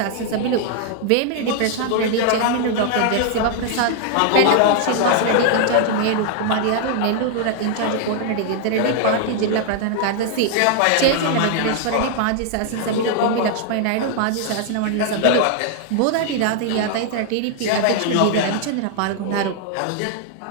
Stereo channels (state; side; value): different; both; correlation 0.00